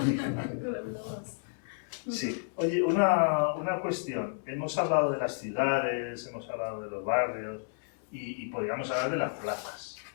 Sí. Oye, una cuestión. Hemos hablado de las ciudades, hemos hablado de los barrios y podríamos hablar de las plazas.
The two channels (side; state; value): right; silent; 57 dB below the other